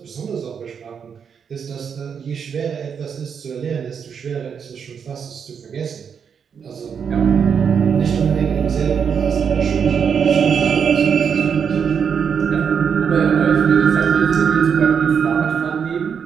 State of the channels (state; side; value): quieter; left; 7.0 dB